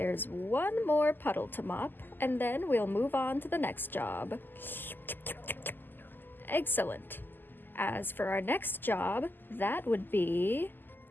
one more puddle to mop, and then we'll move on to the next job. Excellent. As for our next job, that would be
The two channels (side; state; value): right; late; 0.091 ms